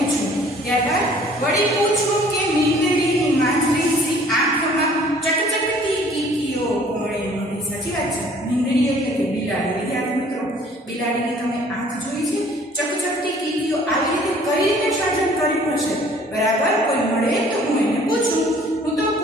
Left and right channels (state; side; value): normal; both; correlation 0.55